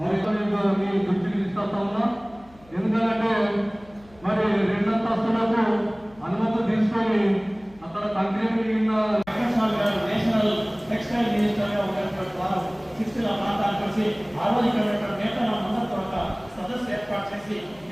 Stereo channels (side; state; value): left; noise; hum, 26 dB below the sound